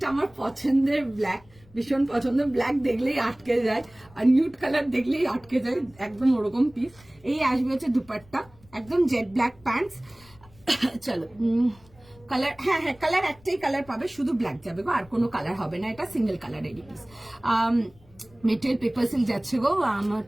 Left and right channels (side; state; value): left; noise; rumble, 27 dB below the sound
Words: আমার পছন্দের ব্ল্যাক, ভীষণ পছন্দের, ব্ল্যাক দেখলেই আটকে যায় আর নিউড কালার দেখলেই আটকে যায়, একদম ওরকম পিস। এই আসবে হচ্ছে দুপাট্টা, একদম জেড ব্ল্যাক প্যান্টস। চলো কালার, হ্যাঁ হ্যাঁ কালার একটাই কালার পাবে, শুধু ব্ল্যাক যাবে গো, আর কোনো কালার হবে না, এটা সিঙ্গেল কালারেরই পিস। মেটেরিয়াল পেপার সিল্ক যাচ্ছে গো, আমার